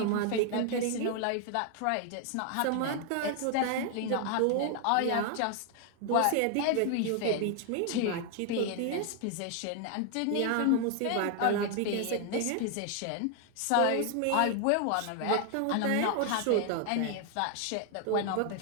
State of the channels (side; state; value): both; different; correlation 0.00